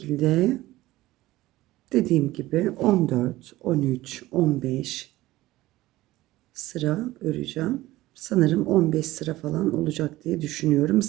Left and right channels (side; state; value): left; quieter; 17.3 dB